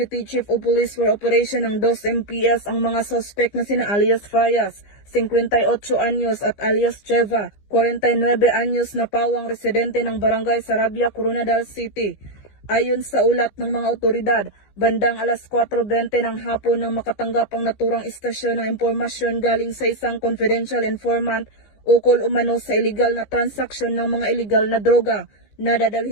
Chief of Police for Operation ng 2 MPS ang mga suspect na sina alias Fayas, 58 anyos at alias Cheva, 49 anyos na pawang residente ng Barangay Sarabia, Coronadal City. Ayon sa ulat ng mga otoridad, bandang alas 4:20 ng hapon nang makatanggap ang naturang istasyon ng impormasyon galing sa isang confidential informant ukol umano sa illegal na transaksyon ng mga illegal na droga na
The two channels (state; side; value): late; right; 15 ms